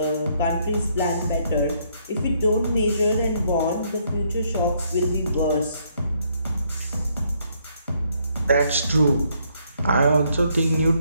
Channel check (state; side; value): inverted; both; correlation -0.71